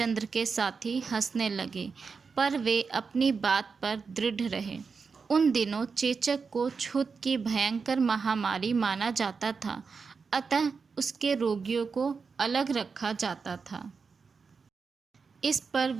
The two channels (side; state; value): left; quieter; 5.1 dB